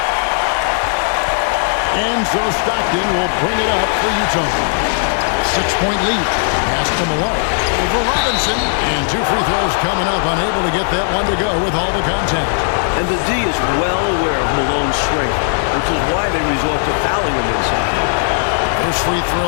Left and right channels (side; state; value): right; silent; 69 dB below the other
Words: And so Stockton will bring it up for Utah. 6-point lead. Pass to Malone. Over Robinson, and 2 free throws coming up, unable to get that one to go with all the contact. And the D is well aware of Malone's strength, which is why they resort to fouling him inside. First free